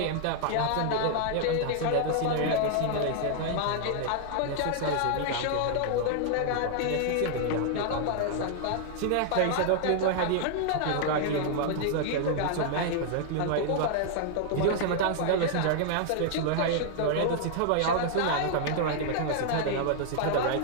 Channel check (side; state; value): both; different; correlation -0.01